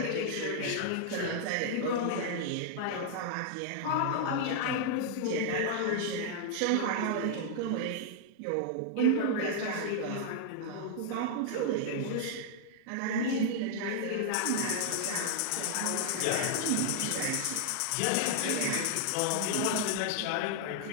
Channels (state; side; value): different; both; correlation 0.00